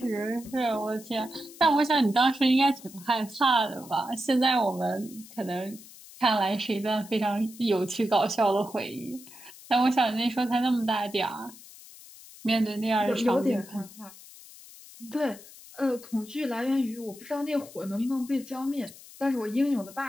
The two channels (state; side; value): noise; left; hiss, 19 dB below the sound